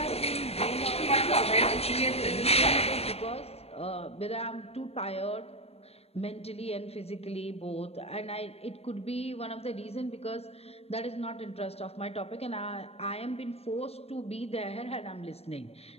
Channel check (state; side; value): late; right; 0.29 ms